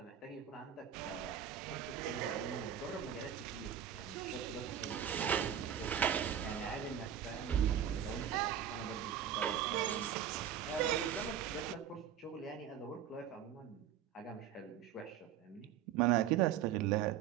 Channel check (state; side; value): quieter; left; 9.5 dB